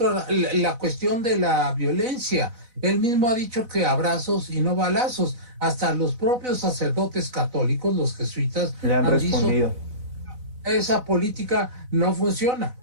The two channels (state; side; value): late; left; 4.0 ms